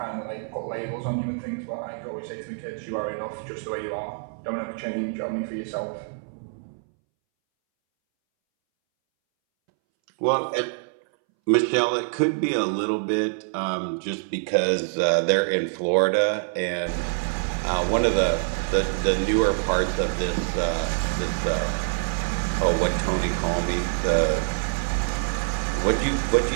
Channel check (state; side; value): silent; left; 61 dB below the other